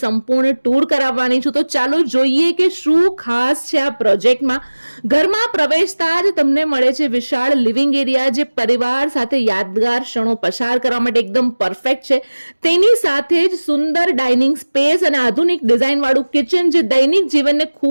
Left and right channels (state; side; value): inverted; both; correlation -1.00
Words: સંપૂર્ણ ટૂર કરાવવાની છું. તો ચાલો જોઈએ કે શું ખાસ છે આ પ્રોજેક્ટમાં. ઘરમાં પ્રવેશતા જ તમને મળે છે વિશાળ લિવિંગ એરિયા જે પરિવાર સાથે યાદગાર ક્ષણો પસાર કરવા માટે એકદમ પરફેક્ટ છે. તેની સાથે જ સુંદર ડાઇનિંગ સ્પેસ અને આધુનિક ડિઝાઇન વાળું કિચન જે દૈનિક જીવનને